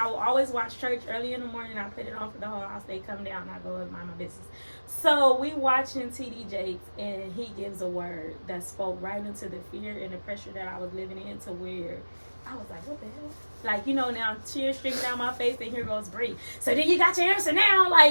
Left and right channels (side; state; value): both; inverted; correlation -1.00